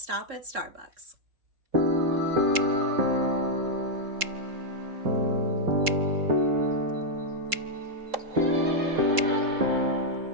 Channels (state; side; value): late; left; 3.7 ms